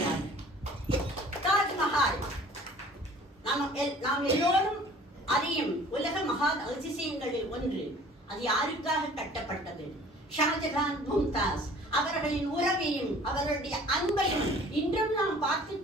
தாஜ்மஹால் நாம் எல்லோரும் அறியும் உலக மகா அதிசயங்களில் ஒன்று. அது யாருக்காக கட்டப்பட்டது? ஷாஜகான், மும்தாஸ் அவர்களின் உறவையும் அவர்களுடைய அன்பையும் இன்றும் நாம் பார்த்து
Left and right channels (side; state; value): both; normal; correlation 0.49